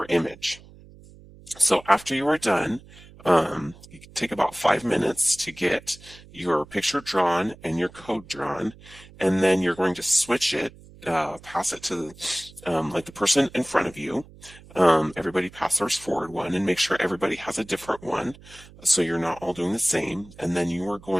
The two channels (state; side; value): noise; right; hum, 22 dB below the sound